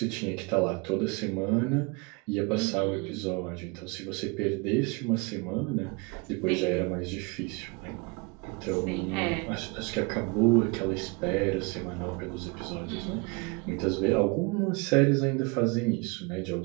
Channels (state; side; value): quieter; left; 28.8 dB